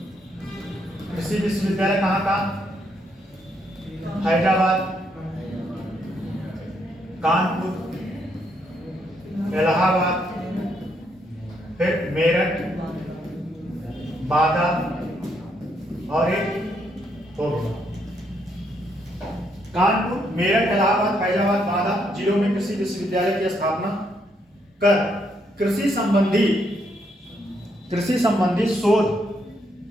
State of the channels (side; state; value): both; normal; correlation 0.75